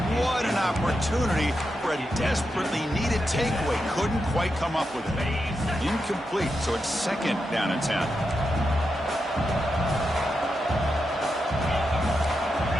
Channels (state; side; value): normal; both; correlation 0.86